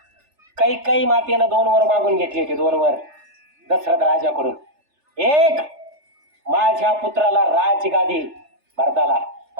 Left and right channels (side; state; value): left; late; 3.3 ms